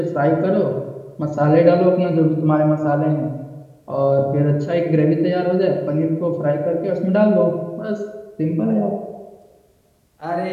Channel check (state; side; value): identical; both; correlation 1.00